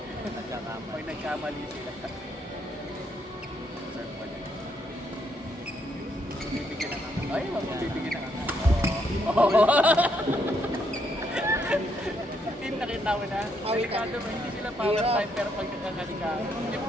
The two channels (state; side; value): normal; both; correlation 0.74